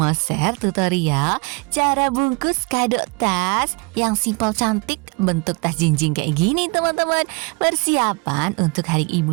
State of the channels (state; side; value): quieter; left; 30.0 dB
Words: share tutorial cara bungkus kado tas yang simple cantik bentuk tas jinjing kayak gini teman-teman. Persiapan untuk hari